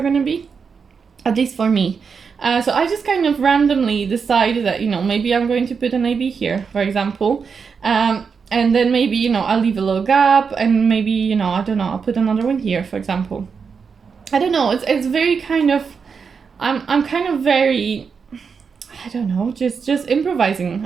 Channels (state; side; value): quieter; left; 5.8 dB